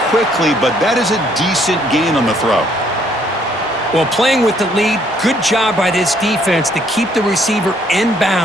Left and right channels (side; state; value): both; normal; correlation 0.66